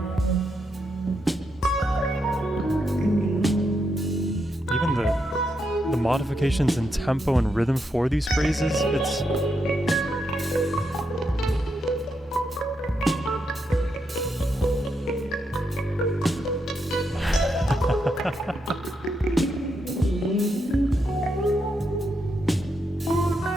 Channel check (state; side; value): normal; both; correlation 0.81